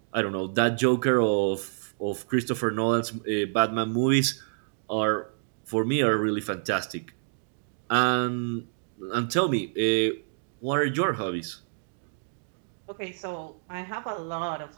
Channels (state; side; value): silent; left; digital silence